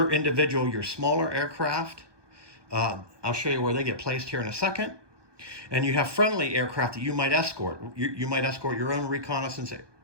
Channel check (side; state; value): left; late; 1.2 ms